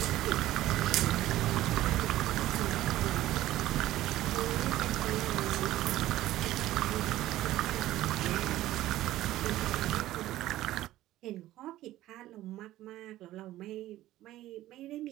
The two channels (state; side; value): quieter; left; 15.0 dB